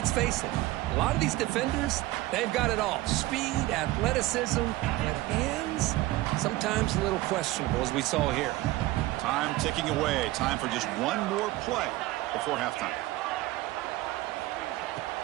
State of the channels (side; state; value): left; quieter; 18.0 dB